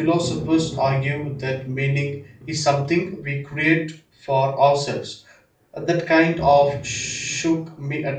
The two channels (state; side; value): identical; both; correlation 1.00